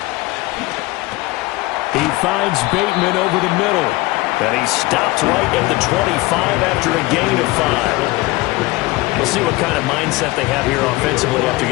He finds Bateman over the middle. And he stopped right at the 25 after a gain of 5. We'll see what kind of mindset they have here offensively after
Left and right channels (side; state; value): right; quieter; 21.1 dB